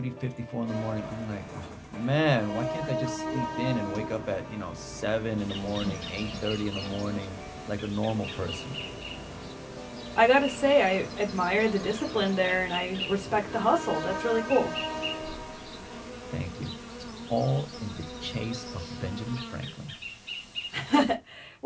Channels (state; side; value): identical; both; correlation 1.00